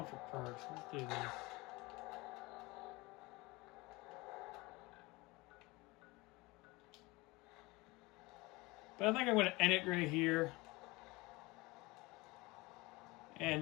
for perks? Let's do this. But I think I'm going to end it right here.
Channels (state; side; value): quieter; right; 23.0 dB